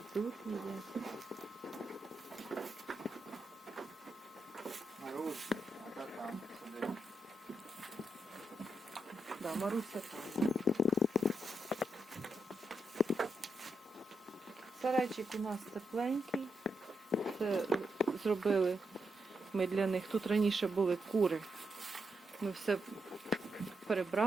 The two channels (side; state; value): both; normal; correlation 0.83